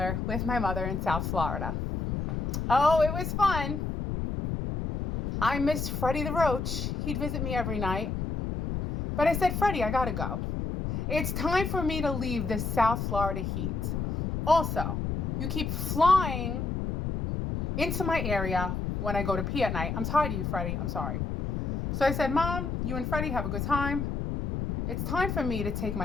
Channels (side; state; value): left; noise; rumble, 2 dB below the sound